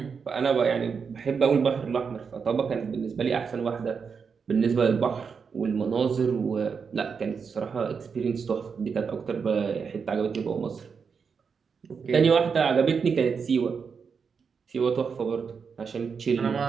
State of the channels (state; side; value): quieter; left; 5.9 dB